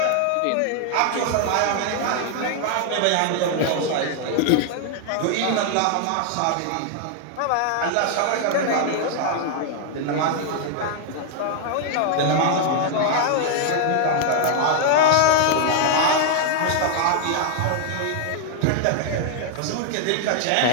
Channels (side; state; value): both; different; correlation 0.00